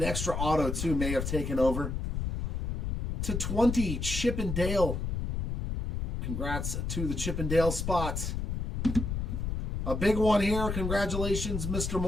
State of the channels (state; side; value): noise; left; rumble, 2 dB below the sound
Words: extra auto, too, may have taken over. To 20, Chip and Dale. Congrats to the Chip and Dale spot. A big one here. Congratulations, Mr.